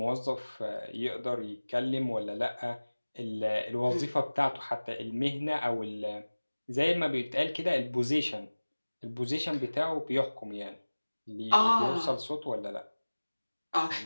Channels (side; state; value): both; inverted; correlation -1.00